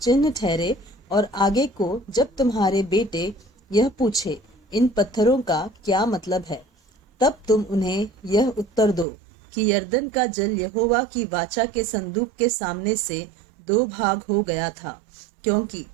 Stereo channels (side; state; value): left; drops out; at 9.1 s